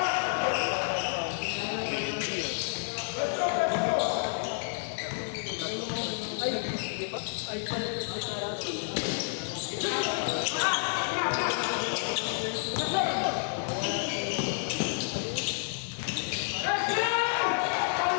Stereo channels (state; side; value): silent; right; 58 dB below the other